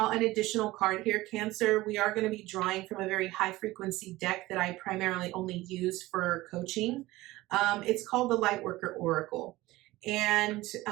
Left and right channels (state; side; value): quieter; left; 18.5 dB